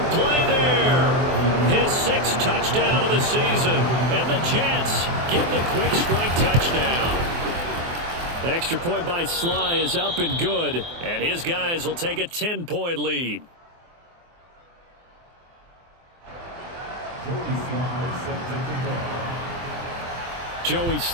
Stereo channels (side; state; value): left; late; 24 ms